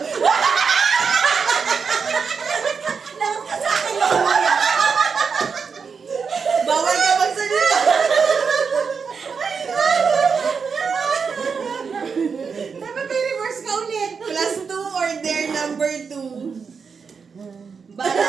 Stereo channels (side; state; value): left; quieter; 5.7 dB